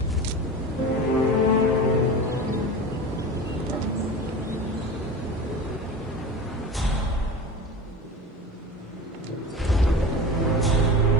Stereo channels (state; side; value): normal; both; correlation 0.31